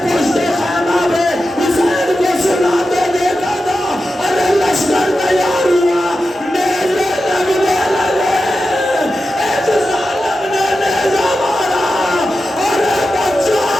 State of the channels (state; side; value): normal; both; correlation 0.91